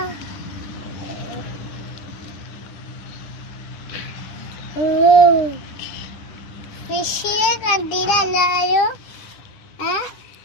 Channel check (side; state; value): right; late; 10 ms